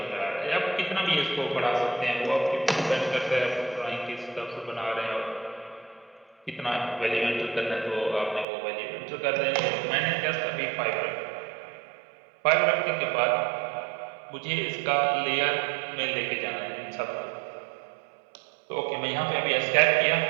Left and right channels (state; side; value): drops out; left; at 8.5 s